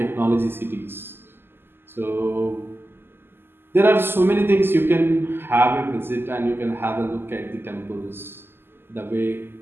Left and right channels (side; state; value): left; late; 0.11 ms